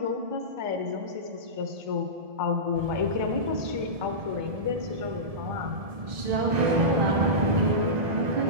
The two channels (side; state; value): left; late; 1.7 ms